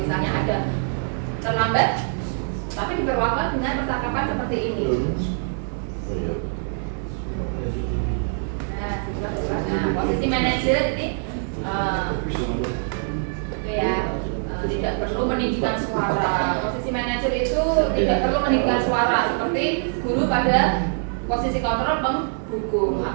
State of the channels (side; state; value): left; silent; 61 dB below the other